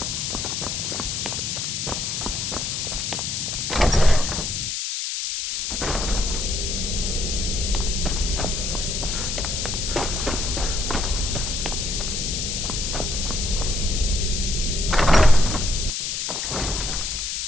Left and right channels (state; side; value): noise; left; hiss, 2 dB below the sound